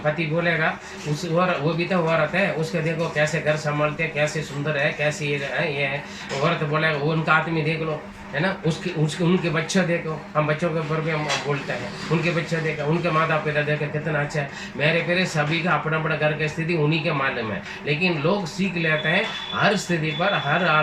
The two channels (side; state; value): both; identical; correlation 1.00